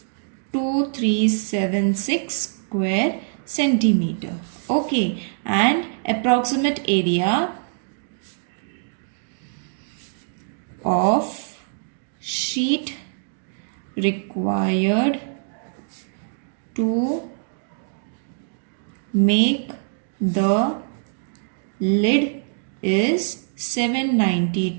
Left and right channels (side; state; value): left; silent; digital silence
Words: 2376 square centimeter. Okay, and approximate area of sheet required to make the lid is